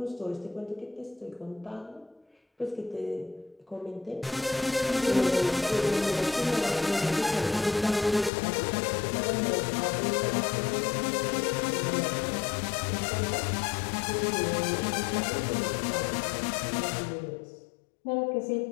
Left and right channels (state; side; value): drops out; right; at 8.3 s